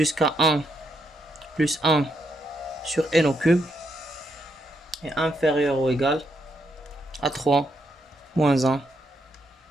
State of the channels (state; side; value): normal; both; correlation 0.79